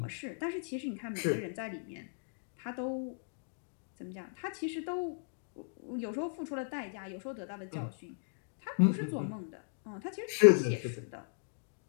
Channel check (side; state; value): right; silent; digital silence